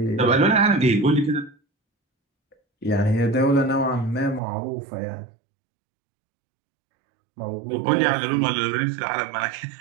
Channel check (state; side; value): drops out; left; at 4.4 s